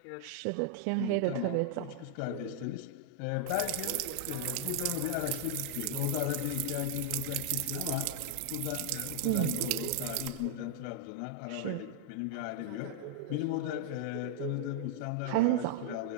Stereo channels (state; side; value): different; both; correlation -0.01